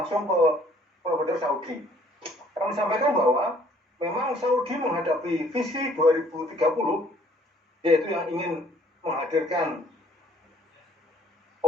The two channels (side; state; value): both; normal; correlation 0.60